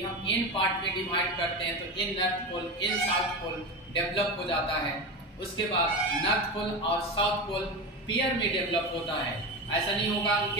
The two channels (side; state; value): both; normal; correlation 0.22